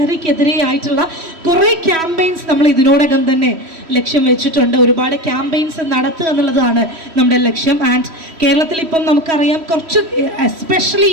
ആയിട്ടുള്ള കുറേ ക്യാമ്പയിൻസ് നമ്മൾ ഇതിനോടകം തന്നെ ലക്ഷ്യം വെച്ചിട്ടുണ്ട്. ഒരുപാട് ക്യാമ്പയിൻസ് നടത്തുക എന്നുള്ളതാണ് നമ്മുടെ ലക്ഷ്യം. ആൻഡ് കേരളത്തിൽ ഇപ്പം നമുക്കറിയാം കുറച്ച് എസ്പെഷ്യലി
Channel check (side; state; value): left; late; 3.1 ms